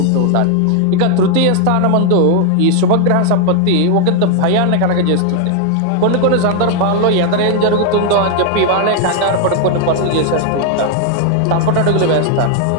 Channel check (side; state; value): both; different; correlation 0.00